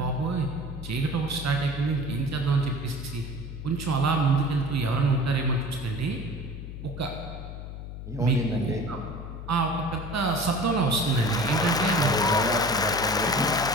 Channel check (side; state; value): left; noise; hum, 10 dB below the sound